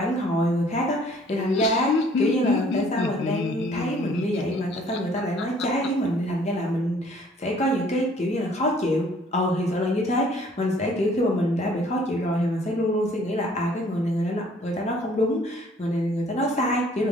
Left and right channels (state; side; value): normal; both; correlation 0.58